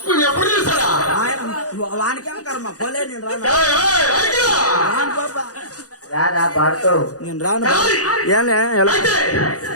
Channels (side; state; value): right; late; 0.67 ms